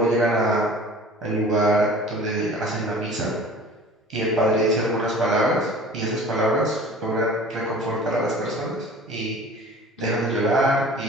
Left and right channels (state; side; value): normal; both; correlation 0.44